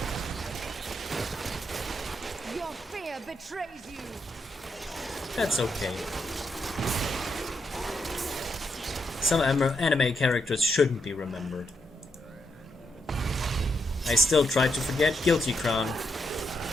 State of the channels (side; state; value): both; normal; correlation 0.81